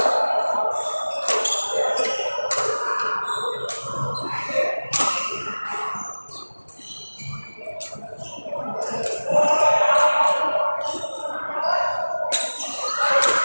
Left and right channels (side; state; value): both; inverted; correlation -1.00